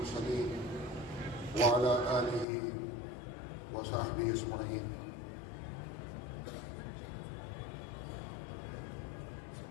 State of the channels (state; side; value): drops out; right; at 2.5 s